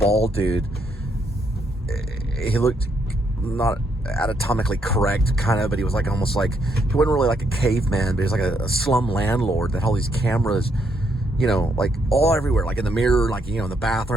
dude. He looked not anatomically correct, kind of, but he was like almost like, he wasn't really like a caveman, but he was like a slum landlord that had all these cameras, you know, like all everywhere, like in the mirror, like, you know, in the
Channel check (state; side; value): normal; both; correlation 0.75